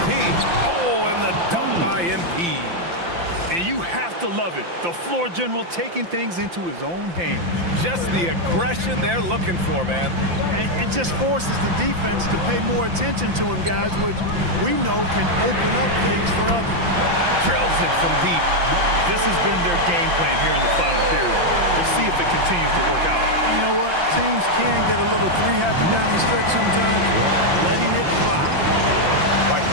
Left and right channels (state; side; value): late; left; 5.8 ms